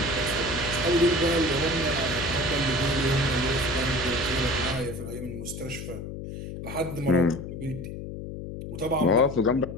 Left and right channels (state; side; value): noise; left; hum, 8 dB below the sound